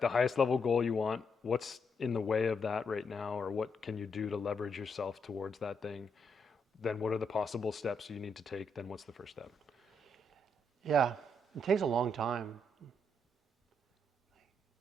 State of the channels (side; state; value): both; normal; correlation 0.78